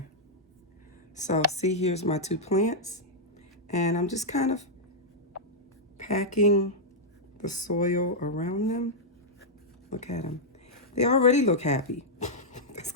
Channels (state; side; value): normal; both; correlation -0.07